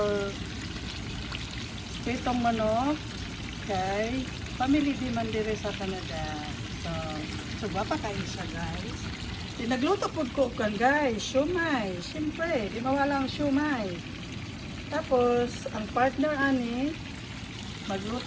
pritong manok kay family di man dire sa Canada. So wapa kayo siya, guys. Nagluto po ko kan, guys, siomai. Siyempre, di mawala ang siomai. Tapos, ang partner ani,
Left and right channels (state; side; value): identical; both; correlation 1.00